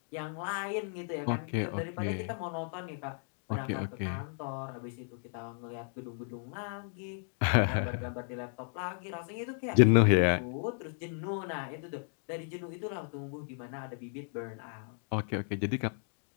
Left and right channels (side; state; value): right; silent; 55 dB below the other